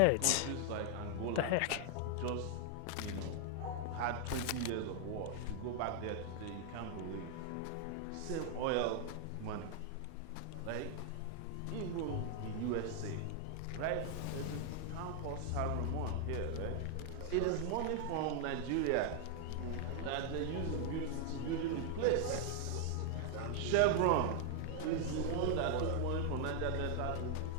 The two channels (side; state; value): both; different; correlation 0.00